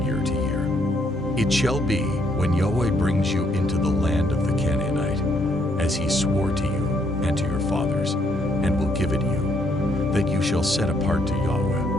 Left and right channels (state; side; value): normal; both; correlation 0.71